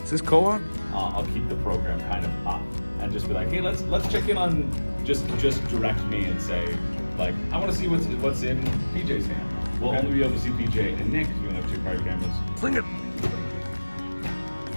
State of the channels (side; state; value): both; inverted; correlation -1.00